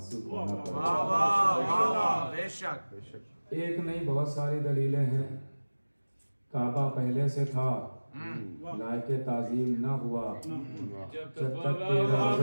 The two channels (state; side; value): inverted; both; correlation -1.00